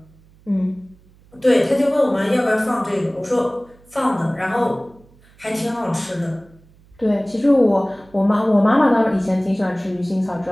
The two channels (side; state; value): right; noise; hum, 28 dB below the sound